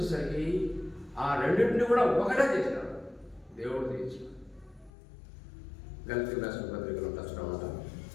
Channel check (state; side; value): drops out; right; at 4.9 s